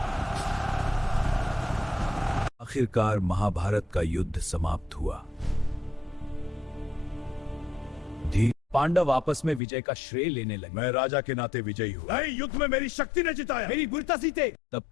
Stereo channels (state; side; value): drops out; right; at 9.6 s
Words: आखिरकार महाभारत का युद्ध समाप्त हुआ। पांडव आपस में विजय का श्रेय लेने लगे। मैं राजा के नाते विजयी हूँ। नहीं, युद्ध में मेरी शक्ति ने जिताया, मेरी वीरता जीते। तब